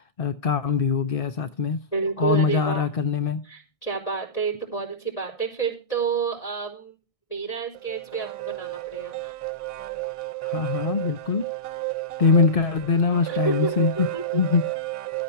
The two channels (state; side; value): late; right; 1.6 ms